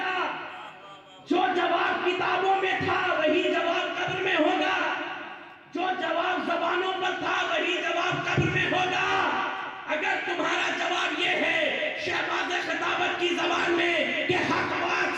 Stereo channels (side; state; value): both; identical; correlation 1.00